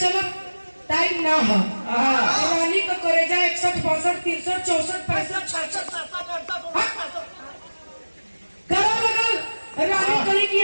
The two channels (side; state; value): both; inverted; correlation -1.00